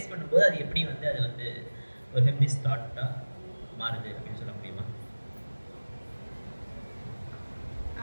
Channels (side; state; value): both; inverted; correlation -1.00